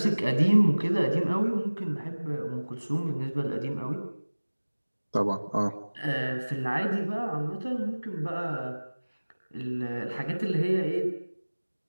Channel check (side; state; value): both; inverted; correlation -1.00